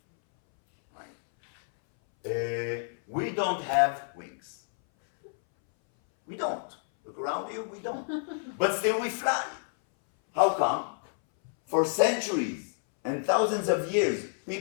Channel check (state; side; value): silent; right; 59 dB below the other